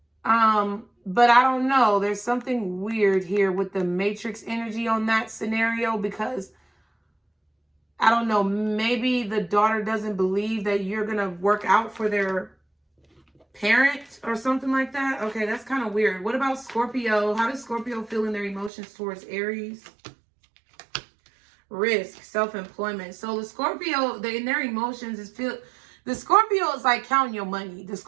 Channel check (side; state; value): left; drops out; at 18.7 s